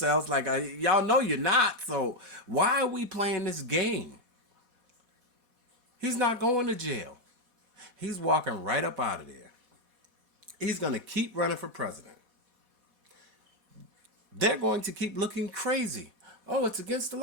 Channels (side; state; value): left; late; 4.1 ms